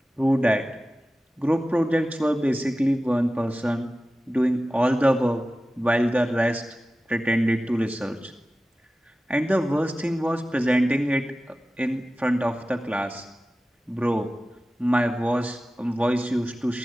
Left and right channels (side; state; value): both; normal; correlation 0.95